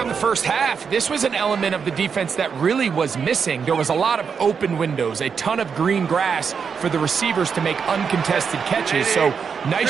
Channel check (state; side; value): quieter; left; 6.3 dB